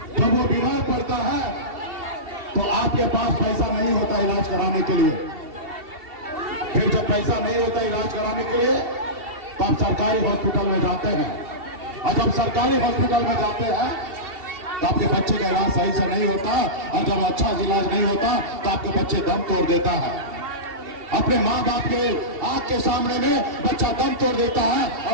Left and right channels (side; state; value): left; late; 2.7 ms